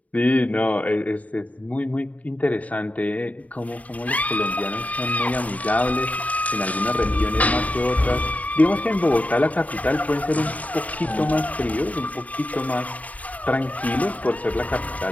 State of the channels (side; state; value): right; late; 0.071 ms